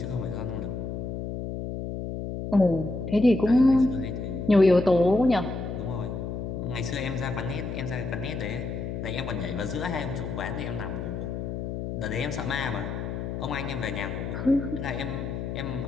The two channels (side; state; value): left; noise; hum, 5 dB below the sound